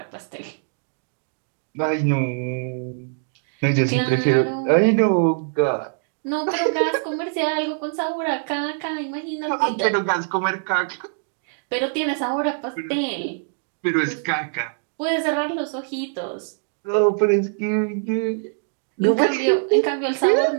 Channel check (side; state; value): left; silent; digital silence